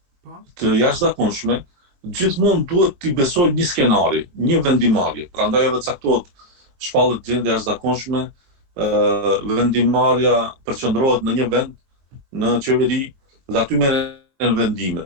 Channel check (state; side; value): late; left; 22 ms